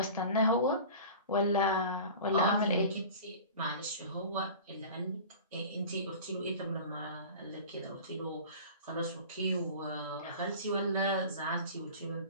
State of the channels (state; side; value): inverted; both; correlation -0.38